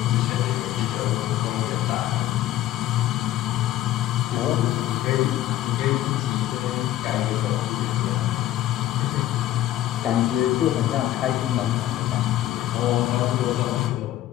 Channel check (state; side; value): quieter; right; 13.6 dB